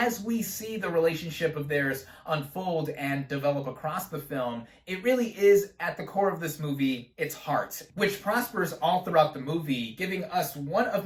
we see the relationship of theirs unfold and develop across the film, it really is, at the core of this movie, its heart, which prospers all throughout the movie, giving us one of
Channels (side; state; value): both; identical; correlation 1.00